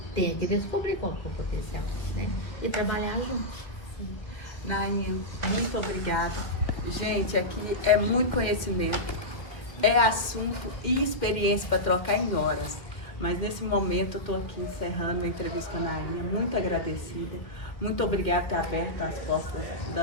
Tem que descobrir qual é o potencial, né? E trabalhar juntos. Nainha, muito obrigada. Gente, aqui é muito conhecimento, é assunto e experiência para trocar em horas. Mas nesse momento eu estou aqui encerrando a entrevista com a Nainha, muito agradecida. Muito obrigada por ter aberto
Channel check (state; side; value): late; right; 1.6 ms